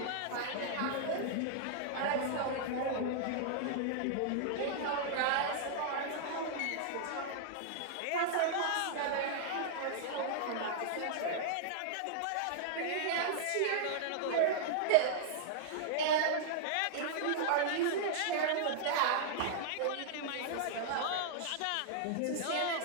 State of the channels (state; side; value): different; both; correlation -0.01